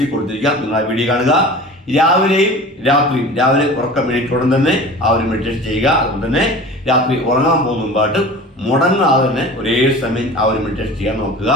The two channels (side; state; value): both; normal; correlation 0.38